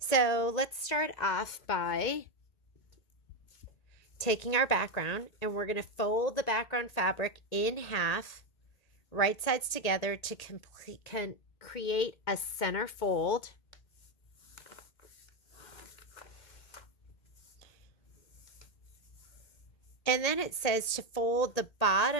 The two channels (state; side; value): late; right; 1.8 ms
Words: let's start off by taking our background, and we're going to fold the background fabric in half, right sides together to create a center fold. And then it says to fold the